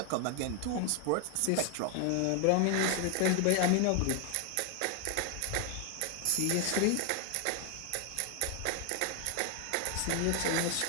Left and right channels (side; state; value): both; different; correlation 0.00